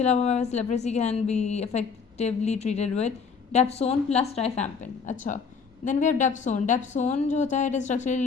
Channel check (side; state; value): right; quieter; 5.6 dB